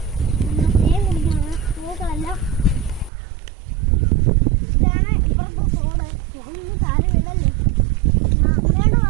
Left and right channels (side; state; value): left; drops out; at 3.1 s